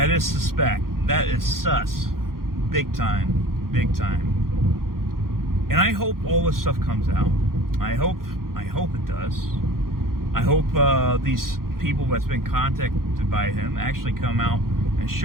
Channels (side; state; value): left; late; 0.92 ms